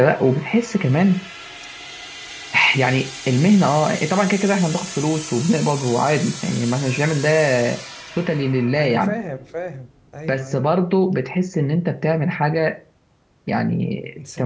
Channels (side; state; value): both; identical; correlation 1.00